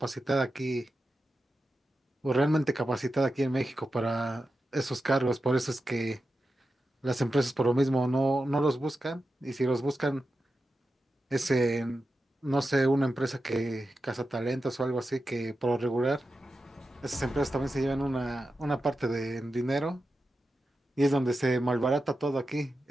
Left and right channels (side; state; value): both; normal; correlation 0.90